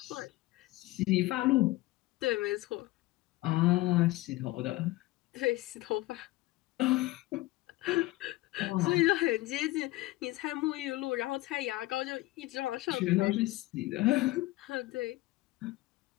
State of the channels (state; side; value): quieter; right; 18.7 dB